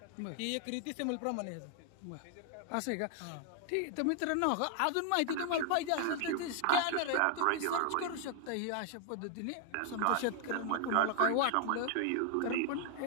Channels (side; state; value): both; different; correlation 0.00